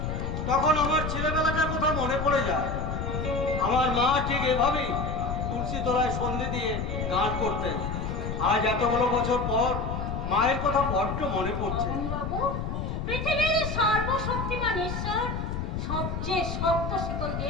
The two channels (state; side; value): noise; left; rumble, 3 dB below the sound